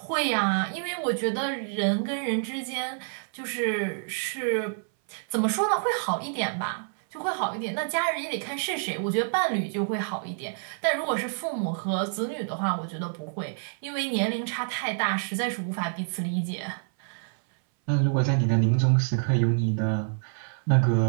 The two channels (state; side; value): silent; left; 60 dB below the other